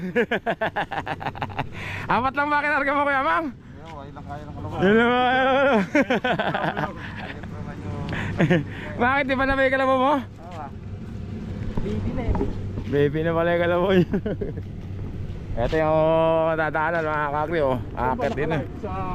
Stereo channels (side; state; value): both; identical; correlation 1.00